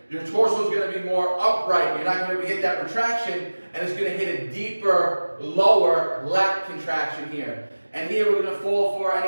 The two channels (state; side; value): inverted; both; correlation -1.00